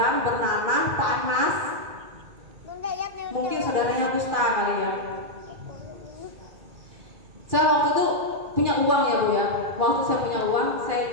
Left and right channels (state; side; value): late; left; 2.3 ms